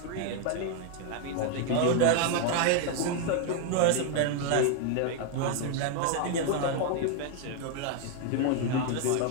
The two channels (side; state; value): both; different; correlation 0.00